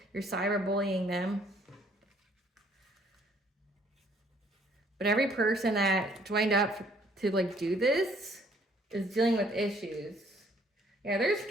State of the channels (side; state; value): both; normal; correlation 0.62